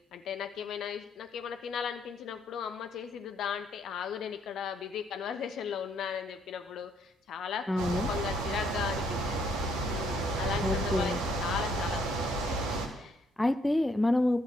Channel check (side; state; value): both; normal; correlation 0.69